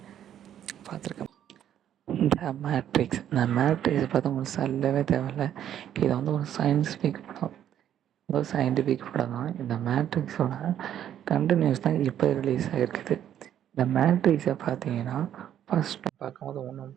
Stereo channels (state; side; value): quieter; left; 10.5 dB